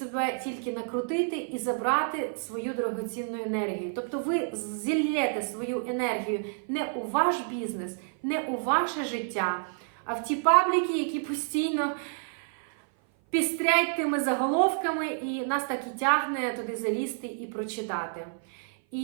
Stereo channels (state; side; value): silent; left; 56 dB below the other